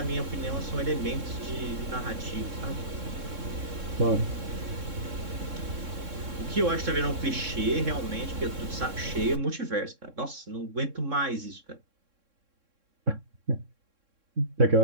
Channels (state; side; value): late; left; 3.6 ms